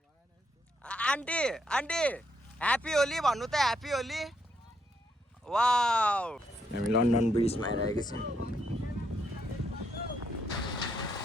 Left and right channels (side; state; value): both; normal; correlation 0.76